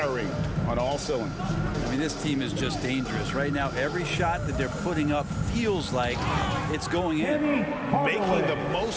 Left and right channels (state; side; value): identical; both; correlation 1.00